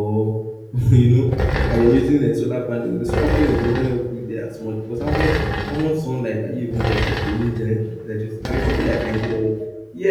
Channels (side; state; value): both; identical; correlation 1.00